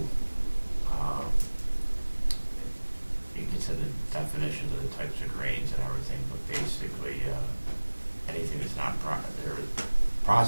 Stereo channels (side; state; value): both; inverted; correlation -1.00